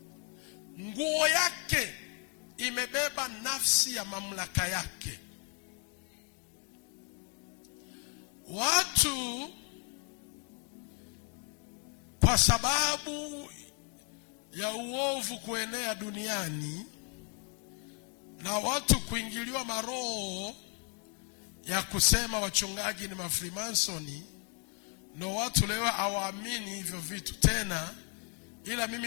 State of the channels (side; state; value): right; quieter; 30.1 dB